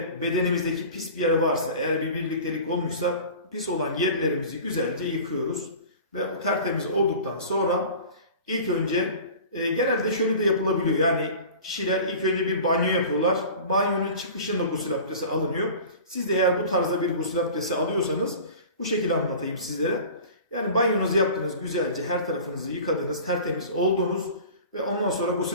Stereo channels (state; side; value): inverted; both; correlation -0.39